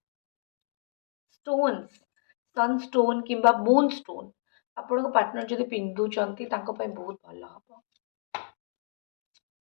स्टोन्स सनस्टोन किंबा मून स्टोन आपण पार्टनर जदि पिंधुचंती बहुत भल हम।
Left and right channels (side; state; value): right; silent; digital silence